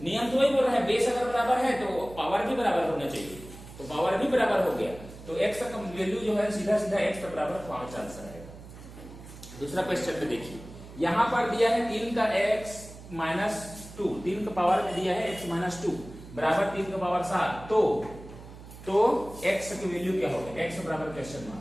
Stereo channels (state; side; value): noise; right; hum, 16 dB below the sound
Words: नियम तो वही बोल रहा है, बेस अगर बराबर है तो पावर भी बराबर होना चाहिए, तो पावर भी बराबर हो गया, तो x का वैल्यू जो है सीधा सीधा x का बराबर 5 आंसर आएगा। दूसरा क्वेश्चन में देखिए, यहाँ पर दिया है 3 का x माइनस 2, 3 का पावर में दिया है x माइनस 2 बराबर 3 का पावर 7, तो x की वैल्यू क्या होगा, x बराबर क्वेश्चन